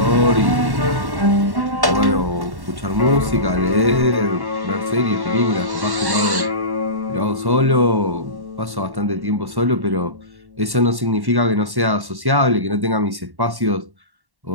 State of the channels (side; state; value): left; late; 1.1 ms